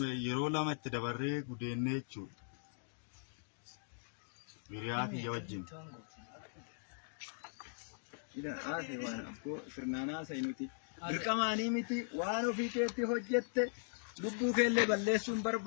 yeroo lama itti dabarree gudeennee jechuudha. Hiriyaa kiyya wajjin. ida ase waan abbo sirnaanaa saynuti dirqamaanii miti waan ofii keetti hojjette lubbuu keellee balleessuun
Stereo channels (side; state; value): right; silent; digital silence